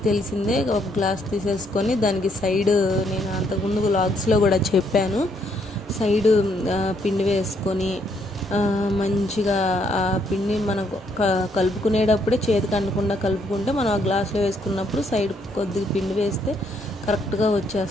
తెలిసిందే, ఒక గ్లాస్ తీసేసుకొని దానికి సైడ్, నేను అంతకుముందు వ్లాగ్స్లో కూడా చెప్పాను, సైడ్ పిండి వేసుకొని మంచిగా ఆ పిండి మనకు కలుపుకునేటప్పుడే చేతికి అంటకుండా కలుపుకుంటే మనం ఆ గ్లాస్లో వేసుకున్నప్పుడు సైడ్ కొద్దిగా పిండి వేస్తే కరెక్ట్గా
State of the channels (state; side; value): normal; both; correlation 0.71